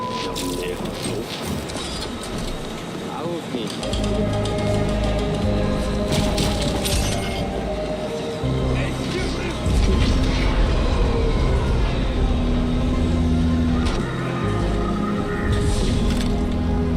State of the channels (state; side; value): identical; both; correlation 1.00